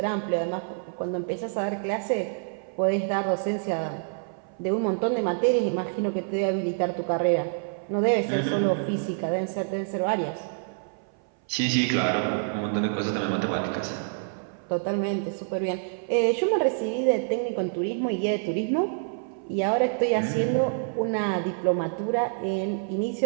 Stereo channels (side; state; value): left; silent; 57 dB below the other